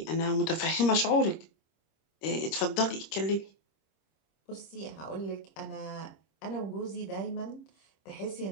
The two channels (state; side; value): late; right; 26 ms